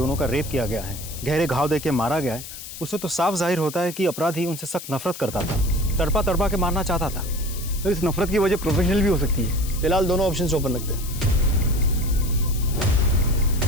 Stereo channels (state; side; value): noise; left; hiss, 12 dB below the sound